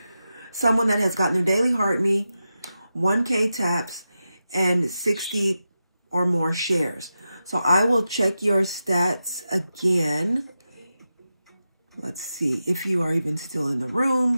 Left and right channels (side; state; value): both; inverted; correlation -0.91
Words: someone that has gotten their daily heart me, 1K taps, and 60 or more shares. So I will check your stats again. Let's see if you are even still in the